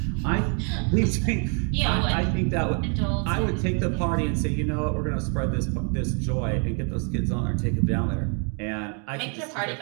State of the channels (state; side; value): quieter; left; 38.2 dB